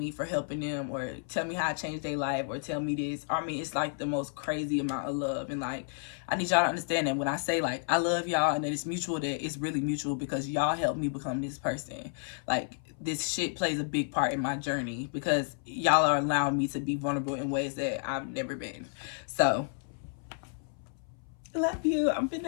for helping them, or tell me how I changed their life, or tell me this. I mean, it's like the most crazy amount of love. And like, I need y'all to understand that when I say like I love y'all and that it's mutual, that it's really mutual, because y'all helped me become this person. Like, this shit plays a big part in my journey because y'all are allowing me to be vulnerable in ways that I've never been. So I love you. I'm finna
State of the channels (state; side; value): silent; right; 57 dB below the other